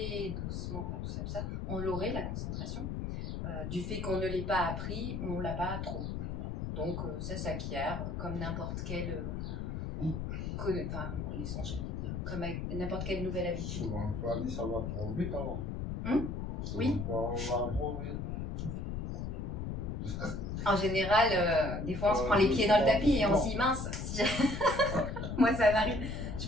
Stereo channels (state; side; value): noise; left; rumble, 4 dB below the sound